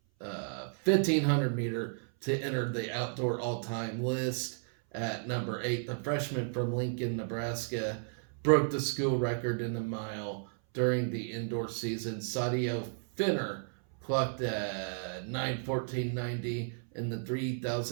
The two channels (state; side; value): silent; left; 56 dB below the other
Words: 1500 meter to enter the outdoor all-time list. At number 8, the freshman from Lincoln, Nebraska, broke the school record in the mile during the indoor season. Sadio Finner clocked 9:14.90 in the